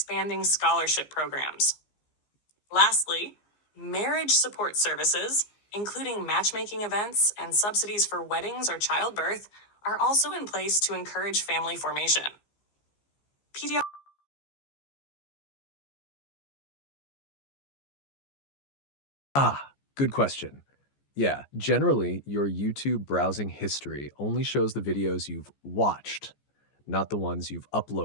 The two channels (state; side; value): late; right; 14 ms